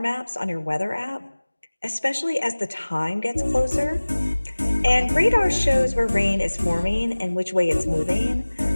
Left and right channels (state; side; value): inverted; both; correlation -1.00